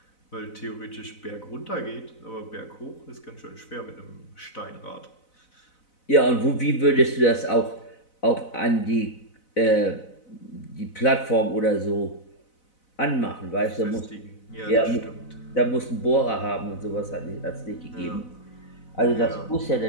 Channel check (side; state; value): right; late; 4.0 ms